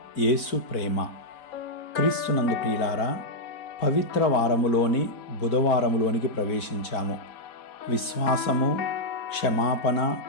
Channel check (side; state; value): right; late; 4.5 ms